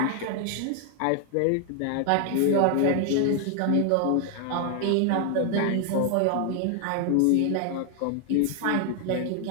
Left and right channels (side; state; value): both; different; correlation 0.00